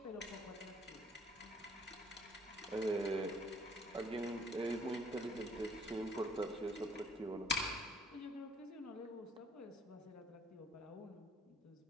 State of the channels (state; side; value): normal; both; correlation 0.60